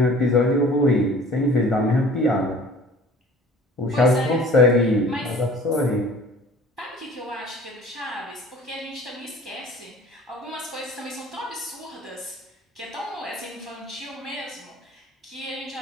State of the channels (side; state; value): both; normal; correlation 0.47